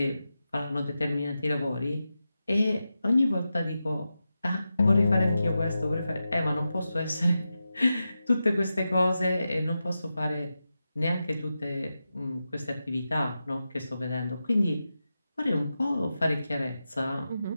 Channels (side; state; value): both; inverted; correlation -0.91